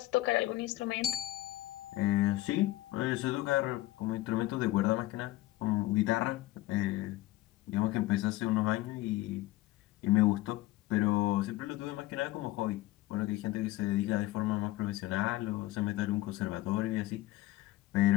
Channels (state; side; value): quieter; right; 17.2 dB